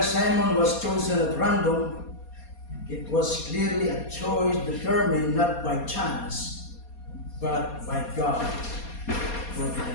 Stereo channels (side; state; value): right; late; 4.2 ms